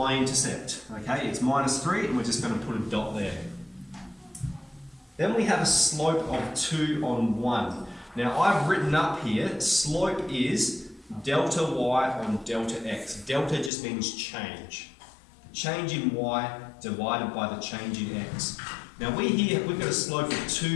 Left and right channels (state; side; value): drops out; right; at 13.7 s